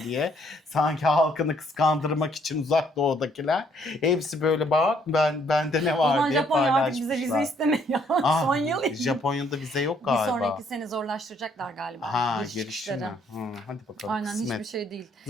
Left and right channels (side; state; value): both; normal; correlation 0.67